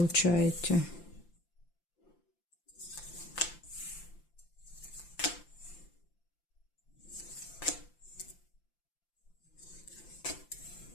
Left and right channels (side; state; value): right; late; 5.8 ms